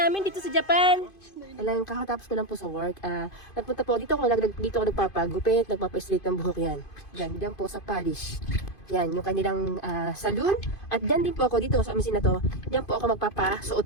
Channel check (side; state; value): right; late; 2.5 ms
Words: dito sa Japan. Alam, kakatapos ko lang po sa work. Nagpunta po dito ako nagpapagupit, nagpapa-straight ng buhok yan. Diyan po sa Polish. Yan, yung kanilang saloon. At diyan din po ako dito sa amisin na to. Diyan po ako